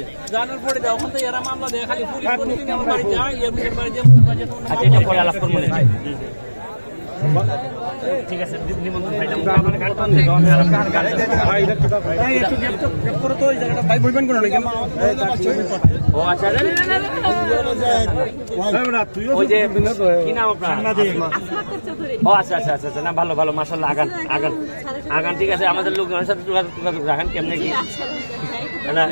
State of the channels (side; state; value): both; inverted; correlation -1.00